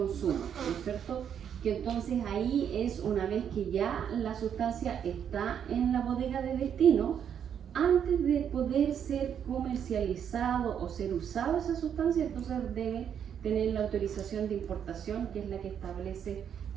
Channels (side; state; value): left; quieter; 8.5 dB